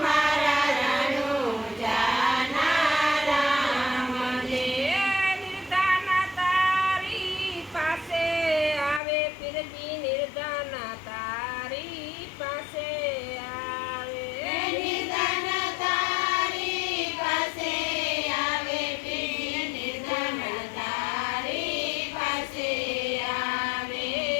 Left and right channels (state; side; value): drops out; right; at 9.0 s